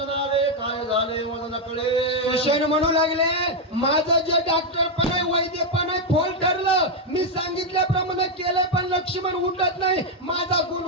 आले काय झाले मला नकळे. सुषेण म्हणू लागले माझं जे डॉक्टर पण आहे वैद्य पण आहे फोल ठरलं मी सांगितल्याप्रमाणे केलं पण लक्ष्मण उठत नाही माझा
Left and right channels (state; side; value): normal; both; correlation 0.02